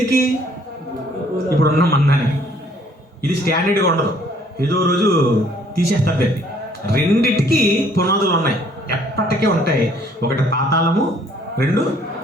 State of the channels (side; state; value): both; normal; correlation 0.61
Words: ఇప్పుడున్న మందానికి. ఇది స్టాండర్డ్గా ఉండదు, ఏదో రోజు తీసేస్తారు దాన్ని. 2టికి పునాదులు ఉన్నాయి, ఎప్పటికీ ఉంటాయి. ఒకటి పాతాళము, 2